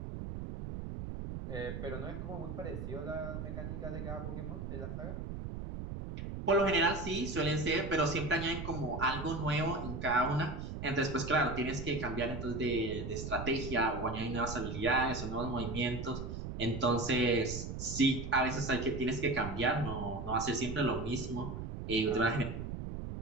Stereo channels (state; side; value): noise; right; rumble, 6 dB below the sound